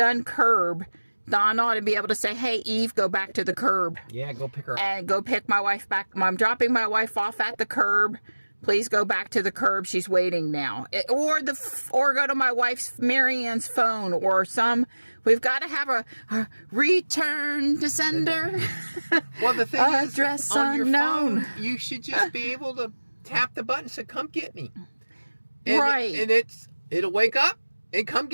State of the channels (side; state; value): both; inverted; correlation -1.00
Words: curb, Dawn ought to be able to say, "Hey, Eve, go back to the curb." Yeah, go pick her up. And go pick my wife back. I'm dropping my wife off at the curb. Please go back to the curb. She's waiting now. Or go to my wife's, Marianne's phone, or we've got to have a return to sender. Well, the thing is, address on unknown. Your phone, you should just be able to tap the button and say, "Come get me." Right. And it'll wake up and come